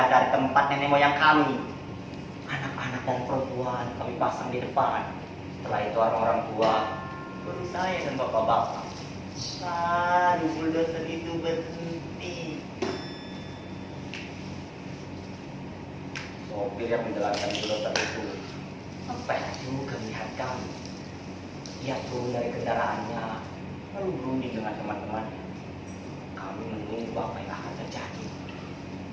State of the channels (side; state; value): both; identical; correlation 1.00